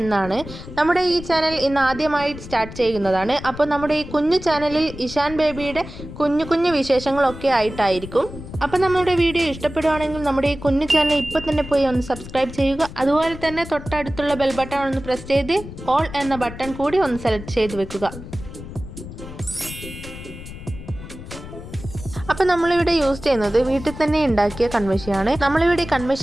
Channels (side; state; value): left; noise; rumble, 13 dB below the sound